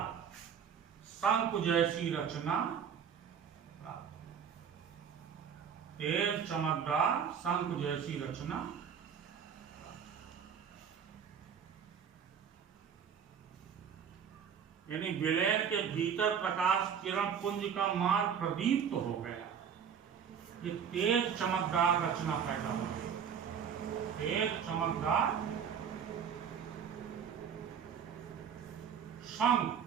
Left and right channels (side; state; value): left; quieter; 7.6 dB